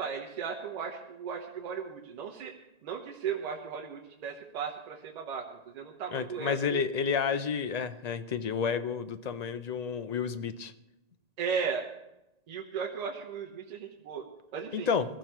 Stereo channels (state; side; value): late; left; 1.9 ms